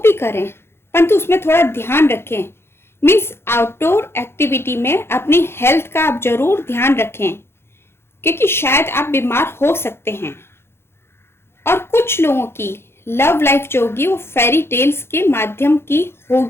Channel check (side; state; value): right; late; 0.12 ms